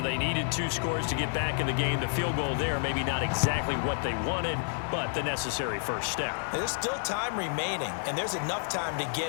they needed 2 scores to get back in the game. The field goal there, maybe not exactly what they wanted, but the necessary first step. There's still time remaining, and there's enough time to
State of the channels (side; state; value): right; silent; 56 dB below the other